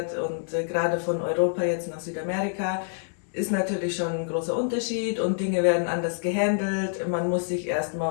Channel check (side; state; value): right; silent; digital silence